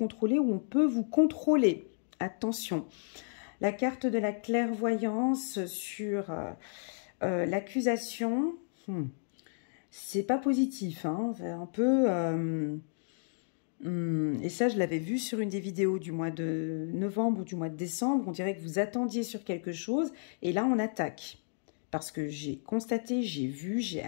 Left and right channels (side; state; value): right; silent; digital silence